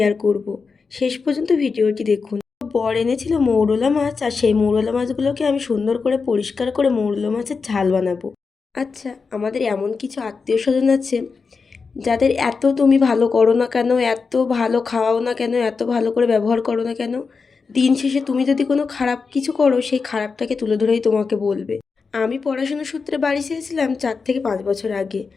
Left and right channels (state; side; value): quieter; right; 4.9 dB